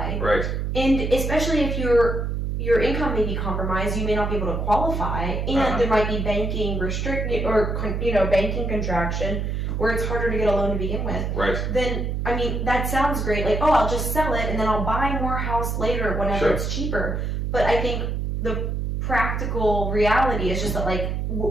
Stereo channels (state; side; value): noise; right; hum, 1 dB below the sound